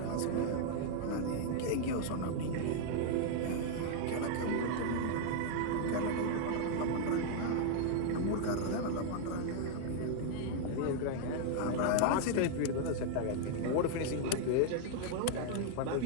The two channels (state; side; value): different; both; correlation -0.01